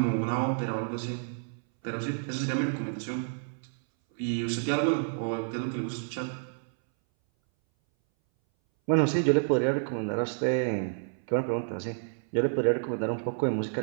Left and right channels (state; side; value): silent; left; 58 dB below the other